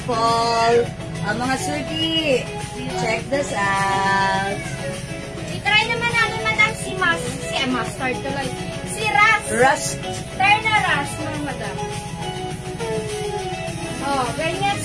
Mga suki, check this out. I-try naman namin, madam, si mustard tuloy. Si Ras. Rust. Try na Ras, mga madam. Oh, ganyan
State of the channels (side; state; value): both; identical; correlation 1.00